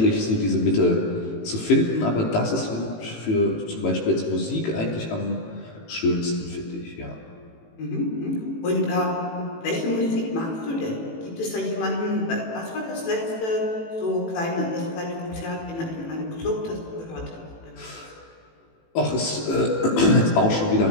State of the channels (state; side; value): late; right; 18 ms